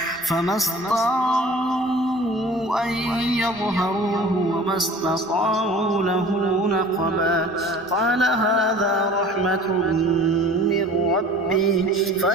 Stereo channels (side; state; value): both; normal; correlation 0.44